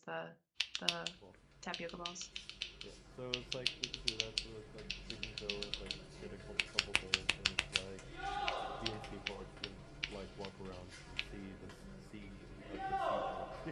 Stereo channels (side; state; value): both; identical; correlation 1.00